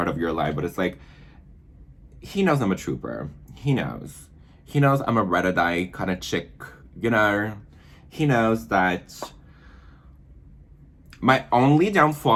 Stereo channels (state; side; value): identical; both; correlation 1.00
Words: of your life, but it's like, he knows I'm a trooper. He knows. He knows I'm a red-eye kind of chick, you know? He knows that my only